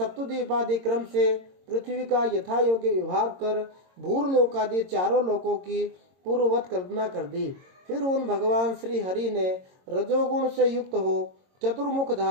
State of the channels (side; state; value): left; late; 22 ms